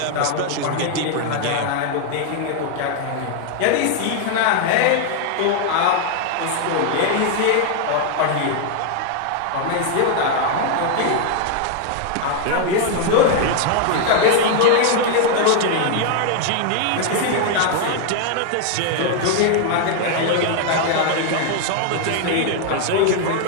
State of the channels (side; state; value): both; different; correlation 0.00